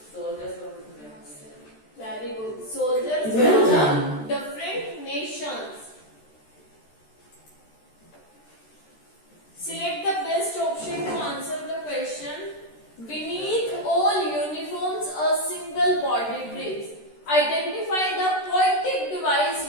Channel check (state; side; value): late; right; 13 ms